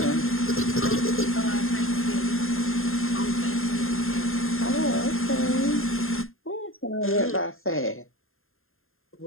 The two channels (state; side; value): late; right; 0.61 ms